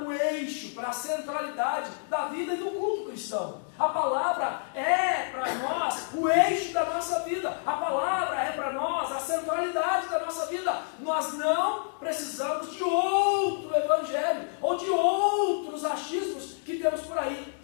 o eixo, para a centralidade da vida e do culto cristão. A palavra é para nós o eixo da nossa vida. A palavra é para nós a centralidade da nossa vida. Nós não precisamos de outro evangelho ou de outros achismos que temos por aí,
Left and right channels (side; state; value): right; silent; digital silence